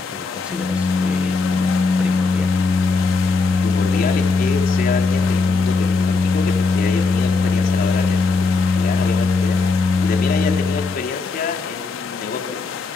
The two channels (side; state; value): right; quieter; 4.1 dB